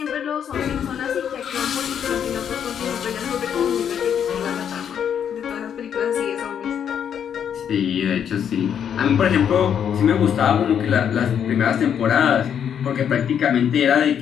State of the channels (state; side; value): quieter; right; 8.5 dB